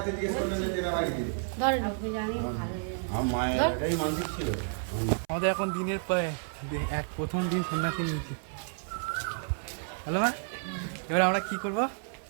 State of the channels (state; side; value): silent; left; 57 dB below the other